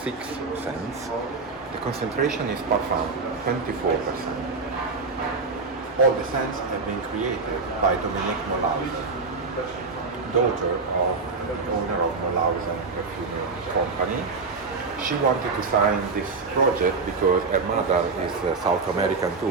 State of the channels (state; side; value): quieter; left; 4.3 dB